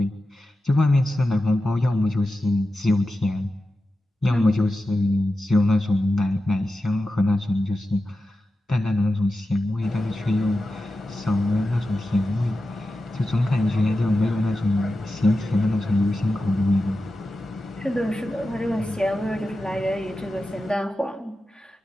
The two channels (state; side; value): normal; both; correlation 0.92